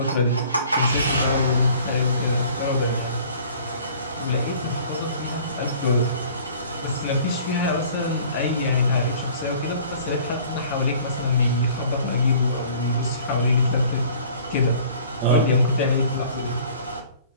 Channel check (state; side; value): inverted; both; correlation -0.50